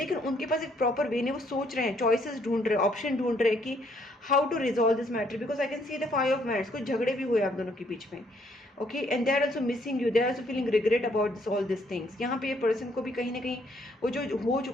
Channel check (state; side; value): normal; both; correlation 0.68